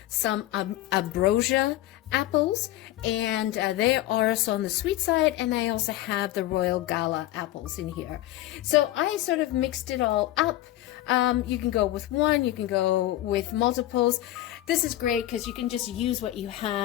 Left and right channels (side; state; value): right; quieter; 14.9 dB